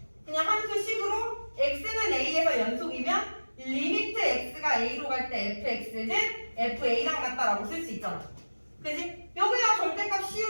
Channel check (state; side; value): inverted; both; correlation -1.00